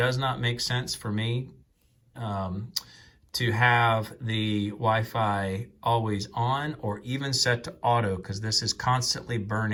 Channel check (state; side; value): identical; both; correlation 1.00